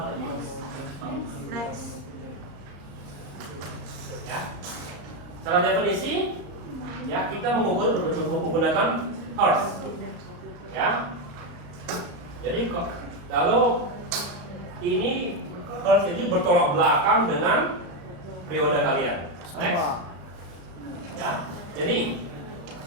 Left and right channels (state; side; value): late; left; 35 ms